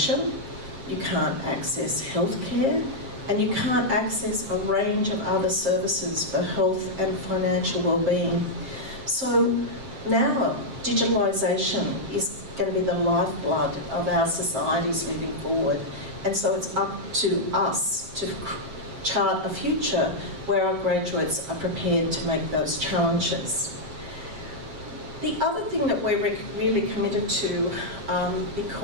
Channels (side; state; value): left; late; 7.5 ms